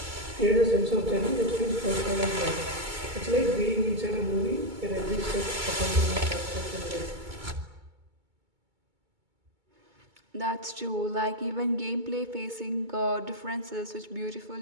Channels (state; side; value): late; left; 2.2 ms